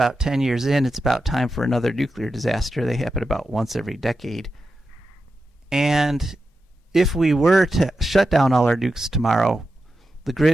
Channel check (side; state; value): both; normal; correlation 0.90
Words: 10 years in. It's about time for another nuclear disaster. They happen about once every decade. And if we were to shut down all our nukes tomorrow, the